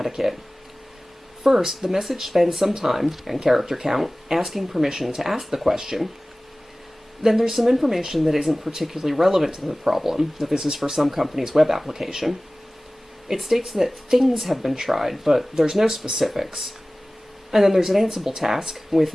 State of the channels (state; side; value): normal; both; correlation 0.98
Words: First, the message spends some time, and character count, asking permission to ask the question. Then there's some information that isn't particularly relevant to the problem, that this is for some company's web application. It states that things have been tried, but there's no specifics. And then there's an Ansible task with